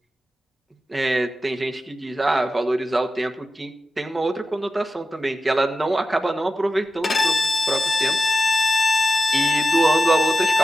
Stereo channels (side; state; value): both; normal; correlation 0.93